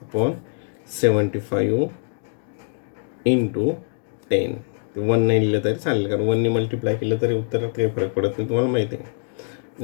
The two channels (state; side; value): silent; right; digital silence